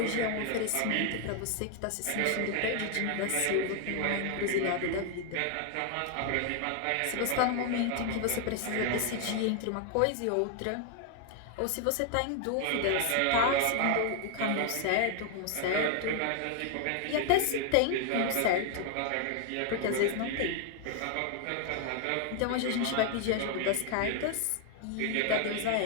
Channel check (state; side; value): different; both; correlation 0.00